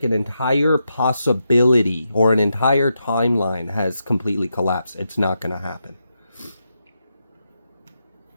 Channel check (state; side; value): inverted; both; correlation -0.85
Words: an entire possibility or an entire timeline has completely collapsed. It's not going to happen.